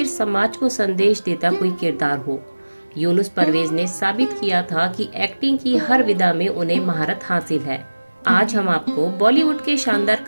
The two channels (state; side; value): inverted; both; correlation -1.00